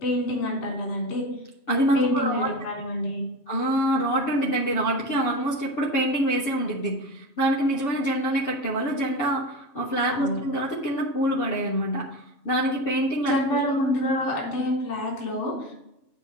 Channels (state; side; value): late; right; 7.3 ms